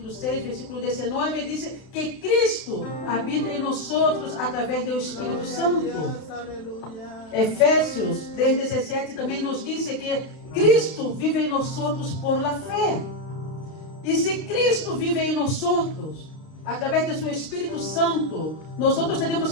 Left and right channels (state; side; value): late; right; 32 ms